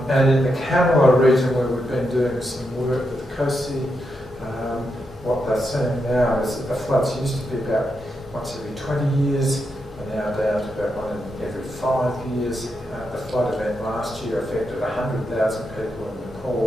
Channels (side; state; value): both; normal; correlation 0.84